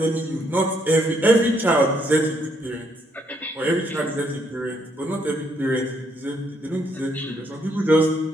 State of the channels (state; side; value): normal; both; correlation 0.72